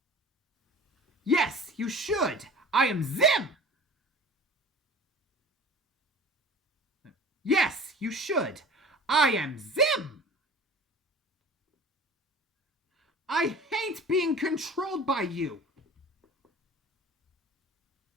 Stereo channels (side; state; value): both; normal; correlation 0.41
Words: Yes, you should. I am Zim. Yes, you should. I am Zim. I hate being controlled by you.